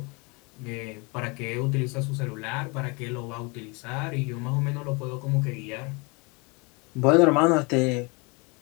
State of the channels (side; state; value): right; quieter; 29.8 dB